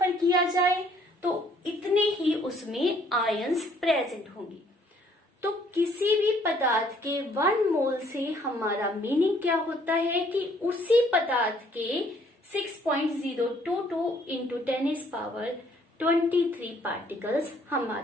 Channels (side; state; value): both; normal; correlation 0.63